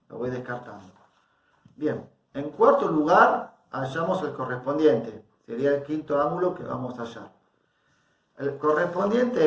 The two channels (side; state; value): both; identical; correlation 1.00